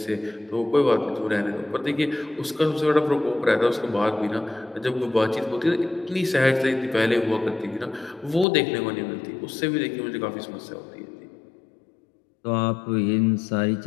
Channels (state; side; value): drops out; right; at 8.5 s